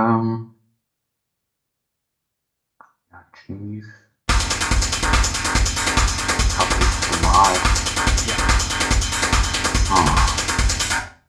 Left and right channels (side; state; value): both; identical; correlation 1.00